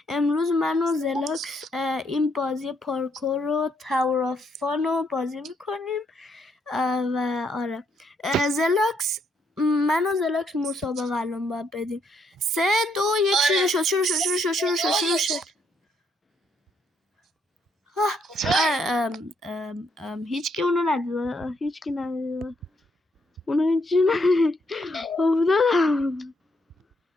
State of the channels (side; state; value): both; normal; correlation 0.73